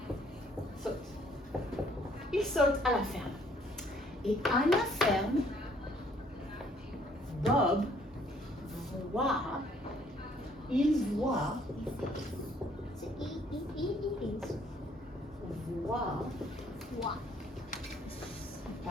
Saute. Il saute à la ferme. Et à la ferme, Bob il voit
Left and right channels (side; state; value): both; normal; correlation 0.63